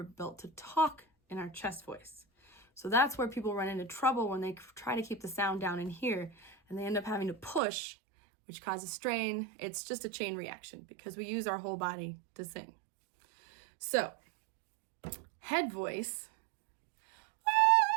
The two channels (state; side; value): drops out; left; at 7.6 s